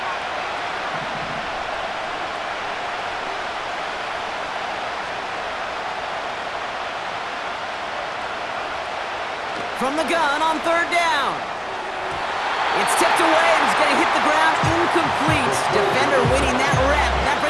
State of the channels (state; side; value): identical; both; correlation 1.00